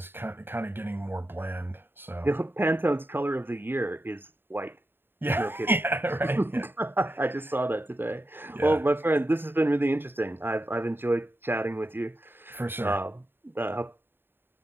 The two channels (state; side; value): late; left; 0.10 ms